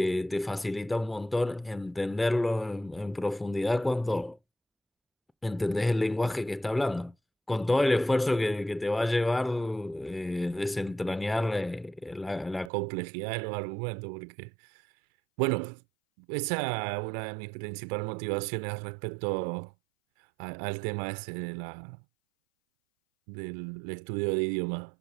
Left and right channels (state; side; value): drops out; left; at 12.7 s